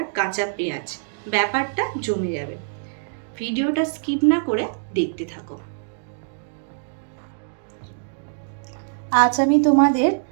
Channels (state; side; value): silent; left; digital silence